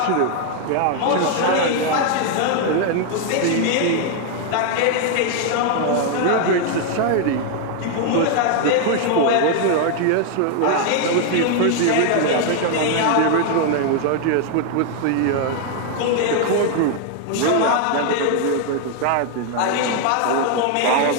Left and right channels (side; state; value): both; different; correlation 0.00